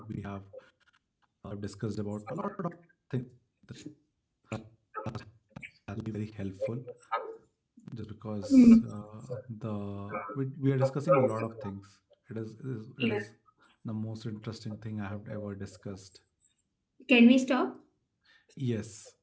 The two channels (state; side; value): identical; both; correlation 1.00